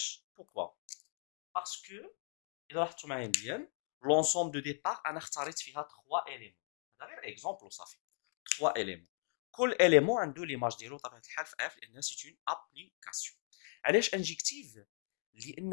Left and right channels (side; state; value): right; silent; 52 dB below the other